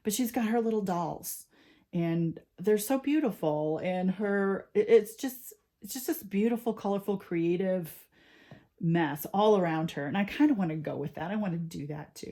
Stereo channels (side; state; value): both; identical; correlation 1.00